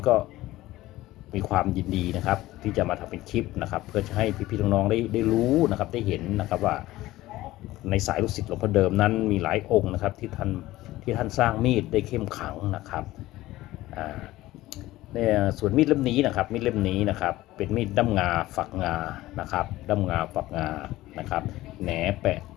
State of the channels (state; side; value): quieter; right; 16.9 dB